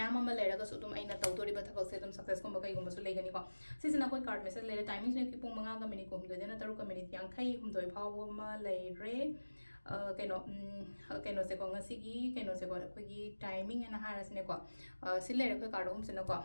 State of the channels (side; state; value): both; inverted; correlation -1.00